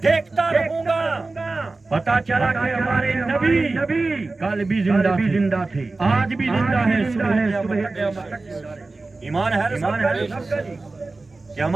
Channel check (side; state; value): left; quieter; 3.4 dB